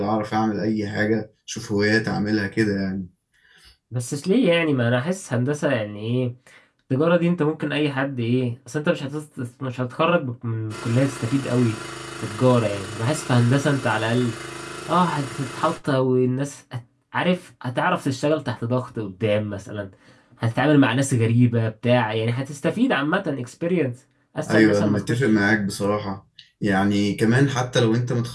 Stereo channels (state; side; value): identical; both; correlation 1.00